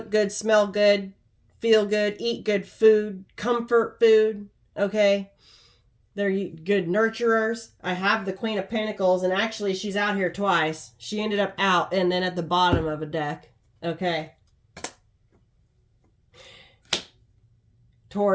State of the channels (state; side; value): identical; both; correlation 1.00